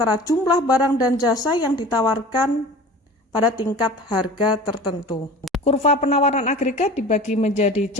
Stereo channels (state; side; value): normal; both; correlation 0.39